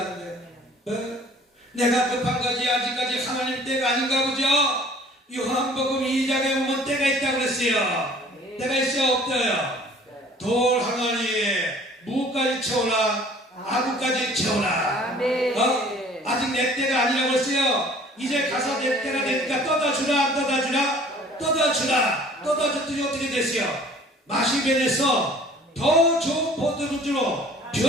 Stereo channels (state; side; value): normal; both; correlation 0.51